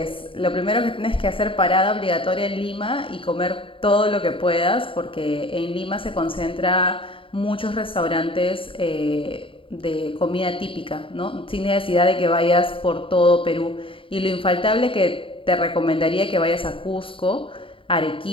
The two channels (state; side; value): late; right; 0.26 ms